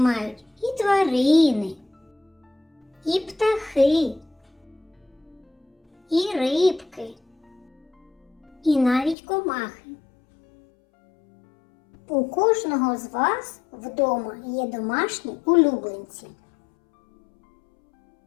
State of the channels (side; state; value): right; drops out; at 9.2 s